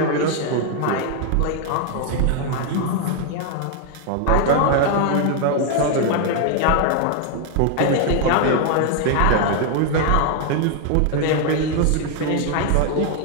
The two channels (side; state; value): both; different; correlation 0.00